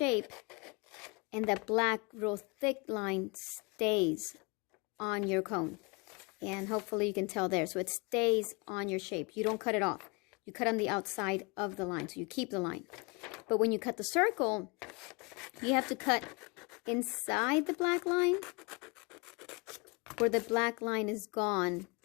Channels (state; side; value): quieter; right; 29.4 dB